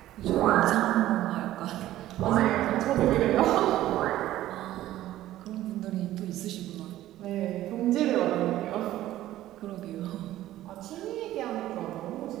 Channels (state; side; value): quieter; left; 14.3 dB